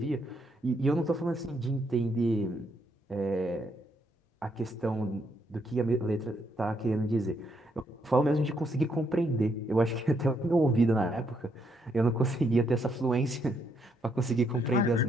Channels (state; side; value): normal; both; correlation 0.75